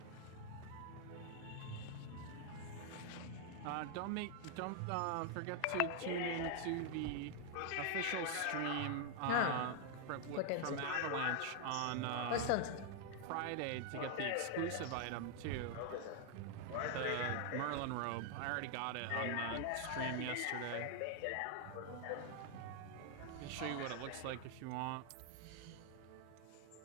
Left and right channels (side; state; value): both; different; correlation 0.00